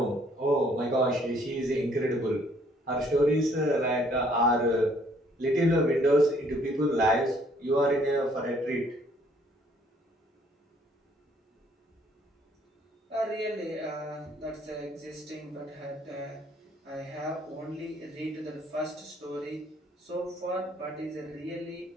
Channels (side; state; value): both; normal; correlation 0.63